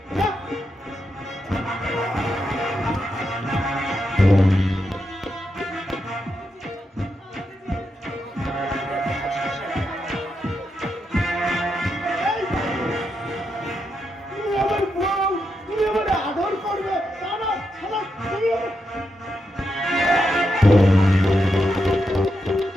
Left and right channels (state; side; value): normal; both; correlation 0.84